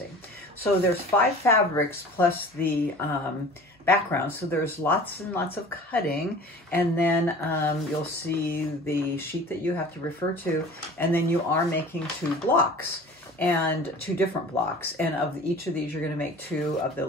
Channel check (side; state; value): both; normal; correlation 0.42